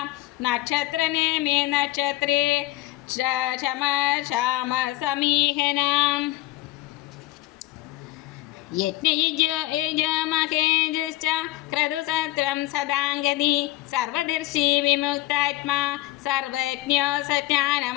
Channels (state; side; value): quieter; right; 17.5 dB